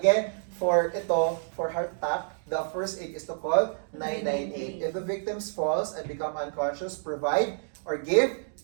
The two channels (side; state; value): left; silent; digital silence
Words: for heart attack, the first aid is to call 998. If the victim falls and become unconscious, provide or give